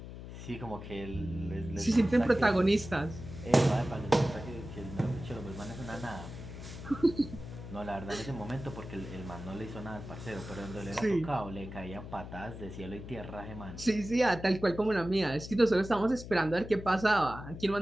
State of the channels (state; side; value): noise; left; hum, 11 dB below the sound